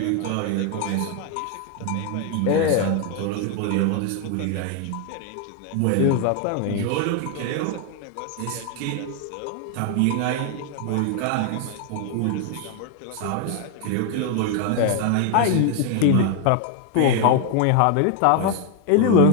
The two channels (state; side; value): different; both; correlation 0.00